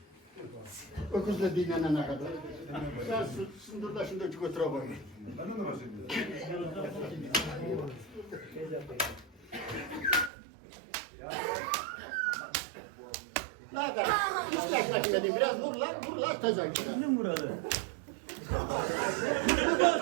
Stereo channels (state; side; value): drops out; left; at 10.3 s